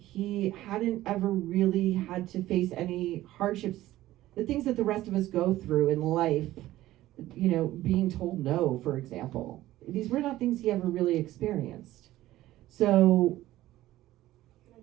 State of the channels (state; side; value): quieter; left; 15.4 dB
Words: hadn't ever really had to face any hardships, the things that the rest of us go through in life. You know, being told no, for example. These were not things he ever really experienced. So, Can